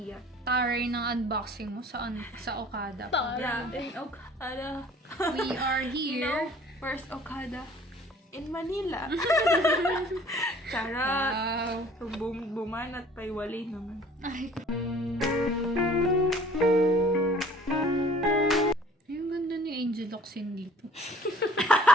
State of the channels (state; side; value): normal; both; correlation 0.51